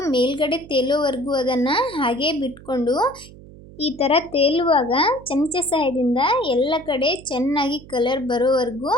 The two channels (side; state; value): right; noise; hum, 19 dB below the sound